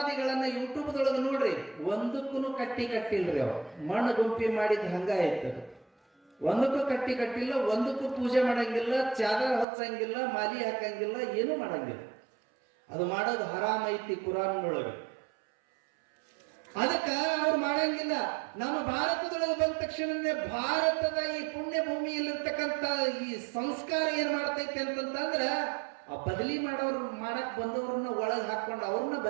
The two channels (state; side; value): drops out; left; at 9.7 s